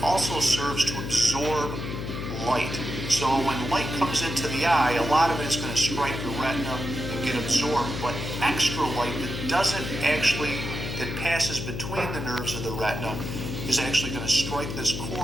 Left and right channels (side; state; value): left; noise; hum, 5 dB below the sound